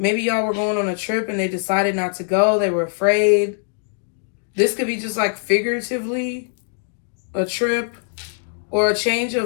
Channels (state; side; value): silent; right; digital silence